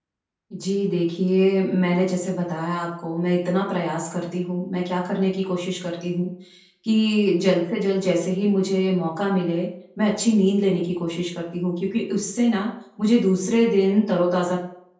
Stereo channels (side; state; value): both; identical; correlation 1.00